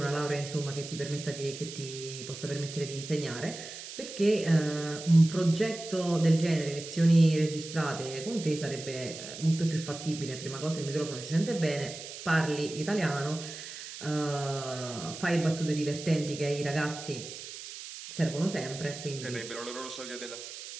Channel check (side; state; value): right; noise; hiss, 11 dB below the sound